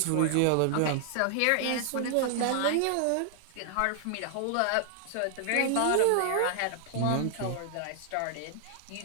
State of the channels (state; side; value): different; both; correlation -0.01